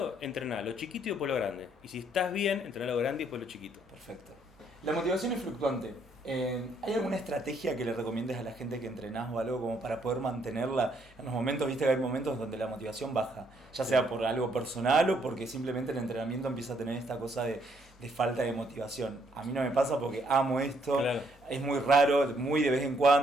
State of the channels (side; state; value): both; normal; correlation 0.70